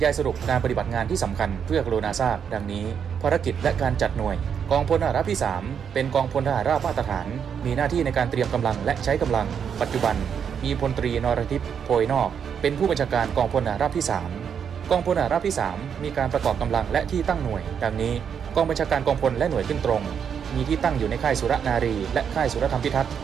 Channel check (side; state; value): left; quieter; 7.5 dB